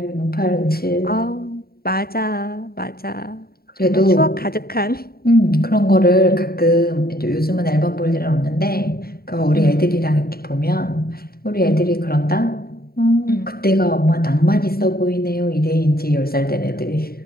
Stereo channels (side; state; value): right; late; 0.44 ms